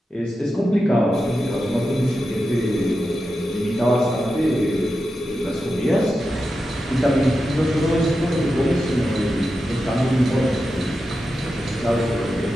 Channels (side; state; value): both; normal; correlation 0.90